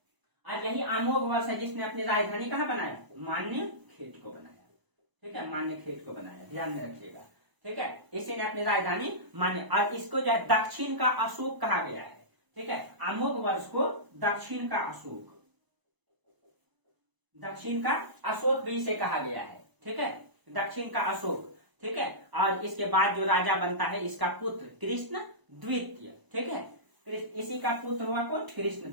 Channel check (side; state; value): left; late; 1.0 ms